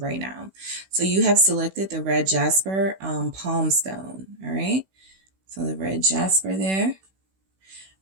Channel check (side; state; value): left; late; 16 ms